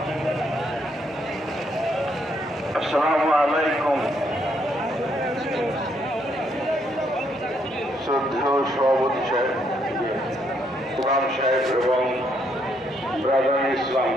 Assalamu alaikum. শ্রদ্ধেয় সভাপতি সাহেব, ইমাম সাহেব এবং ব্রাদার ইসলাম,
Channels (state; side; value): normal; both; correlation 0.73